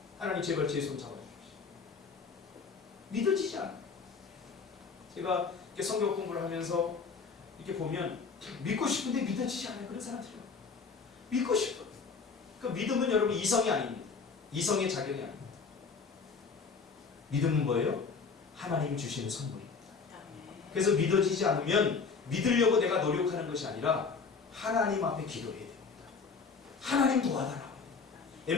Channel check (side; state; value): right; quieter; 5.1 dB